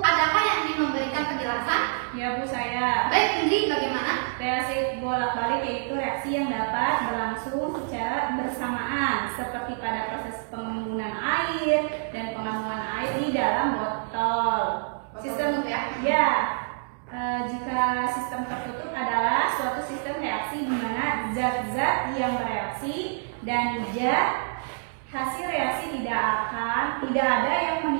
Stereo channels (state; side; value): silent; left; digital silence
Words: Adakah yang ingin memberikan penjelasan? Ya Bu, saya. Baik, Indri, bagaimana? Reaksi bolak-balik yaitu reaksi yang dapat berlangsung secara bersamaan seperti pada proses pengembunan air dan pengambunan air di dalam botol. Sistem ya? Ya, jika sistem tertutup adalah suatu sistem reaksi di mana zat-zat yang bereaksi, dan hasil reaksi tidak ada yang